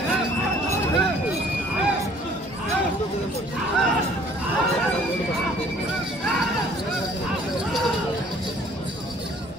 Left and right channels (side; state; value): both; normal; correlation 0.56